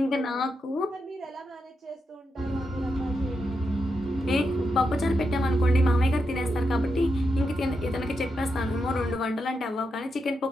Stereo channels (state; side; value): normal; both; correlation 0.85